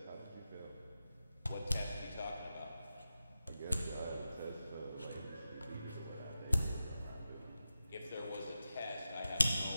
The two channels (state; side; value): inverted; both; correlation -0.91